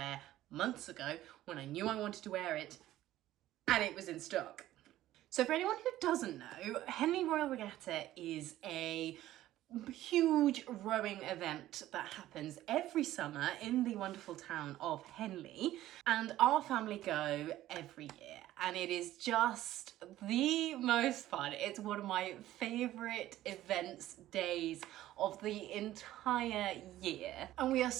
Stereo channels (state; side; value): quieter; left; 14.4 dB